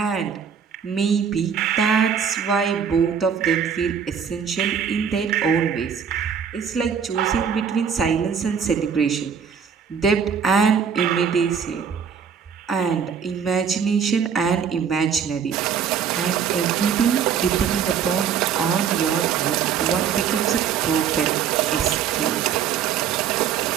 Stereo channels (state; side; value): quieter; left; 7.3 dB